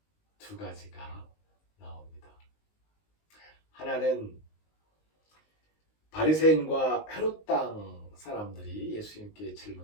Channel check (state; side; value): late; right; 19 ms